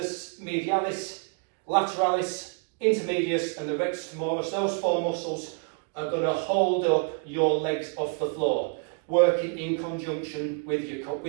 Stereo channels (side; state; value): left; quieter; 37.3 dB